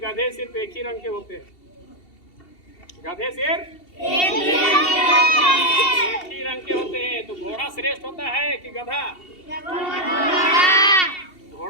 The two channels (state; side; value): late; right; 2.7 ms